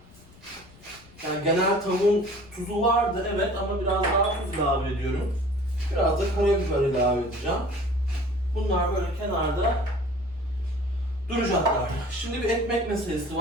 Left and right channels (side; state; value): left; noise; rumble, 24 dB below the sound